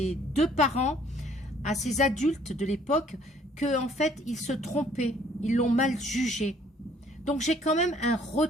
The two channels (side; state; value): both; normal; correlation 0.60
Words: deux parents, à ces adultes de l'époque, que en fait, ils se trompaient, ils l'ont mal jugé. Donc j'ai quand même un